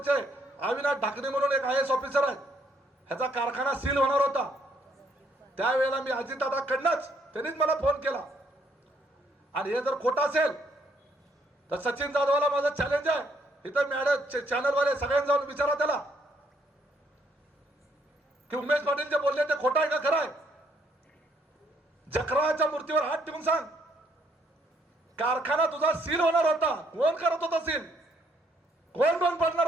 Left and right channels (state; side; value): normal; both; correlation 0.69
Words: अविनाश ढाकणे म्हणून एक IAS ऑफिसर आहेत, ह्याचा कारखाना सील होणार होता. त्यावेळेला मी अजितदादाकडनंच, त्यांनीच मला फोन केला. आणि हे जर खोटं असेल तर सचिन जाधवला माझं चॅलेंज आहे, इथं मॅडम चॅनलवाले सगळ्यांना जाऊन विचारा त्याला की उमेश पाटील जे बोलले ते खोटं आहे का खरं आहे. जकराच्या मूर्तीवर हात ठेवून सांग, कारखाना तुझा सील होणार होता, कोण करत होता सील, कोण बंद पडणार